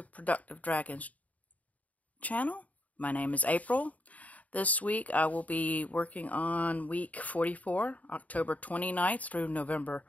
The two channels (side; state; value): right; late; 0.071 ms